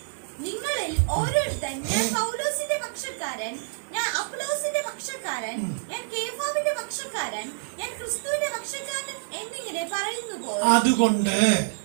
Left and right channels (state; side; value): silent; left; 56 dB below the other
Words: നിങ്ങളിൽ ഓരോരുത്തൻ ഞാൻ പൗലോസിന്റെ പക്ഷക്കാരൻ, ഞാൻ അപ്പൊല്ലോസിന്റെ പക്ഷക്കാരൻ, ഞാൻ കേഫാവിന്റെ പക്ഷക്കാരൻ, ഞാൻ ക്രിസ്തുവിന്റെ പക്ഷക്കാരൻ എന്നിങ്ങനെ പറയുന്നുവോ? അതുകൊണ്ട്